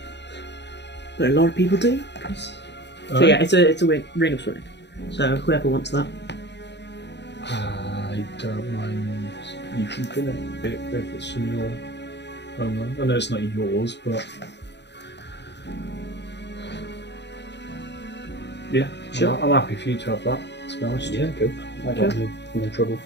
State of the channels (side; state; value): right; late; 0.50 ms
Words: but a lot of people do. So yeah, it's a ring of swimming. So whoever wants that. I don't mind you keeping it if it's in your homeland. I know it's not yours, but yeah, Sure. I'm happy for you to have that. To be honest, Yeah, cool. I Sure. got no trouble.